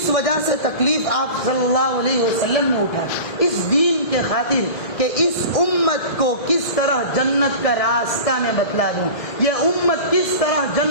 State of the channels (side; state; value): right; late; 1.6 ms